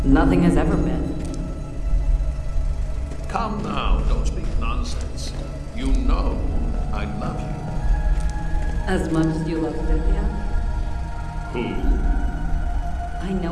Nothing has ever been. Come now, don't speak nonsense. You know I love you. As much as you love Cynthia? Who? I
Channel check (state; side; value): identical; both; correlation 1.00